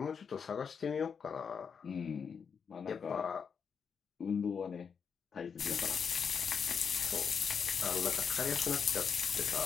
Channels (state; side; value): quieter; right; 6.4 dB